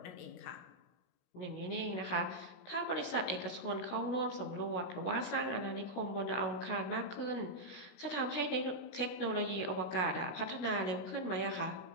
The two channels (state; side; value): late; right; 16 ms